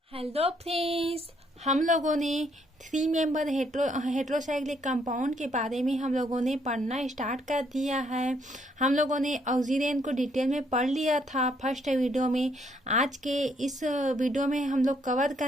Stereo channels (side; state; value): both; normal; correlation 0.70